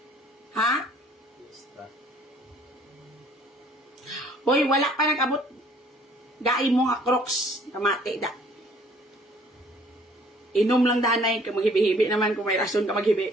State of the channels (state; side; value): normal; both; correlation 0.58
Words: Ha? Fiesta. Hoy, wala pa nag-abot. Gai mo nga crocs, kamate da. Inom lang danay, ka maghibi-hibi naman kung may rason ka maghibi.